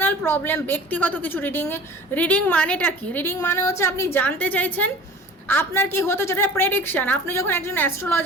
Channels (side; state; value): both; normal; correlation 0.43